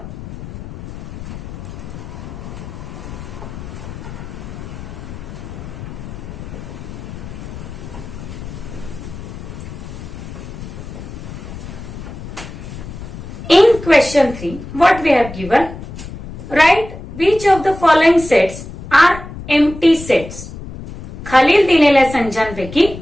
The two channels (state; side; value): noise; left; rumble, 11 dB below the sound